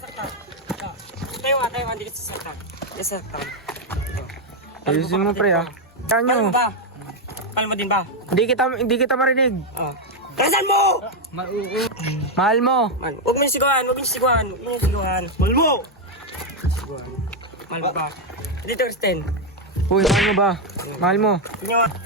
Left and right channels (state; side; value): normal; both; correlation 0.02